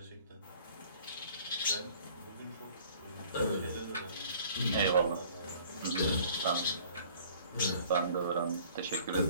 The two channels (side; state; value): both; inverted; correlation -0.52